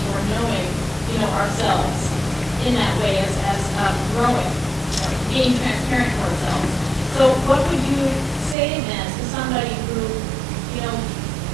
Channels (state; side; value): drops out; left; at 8.6 s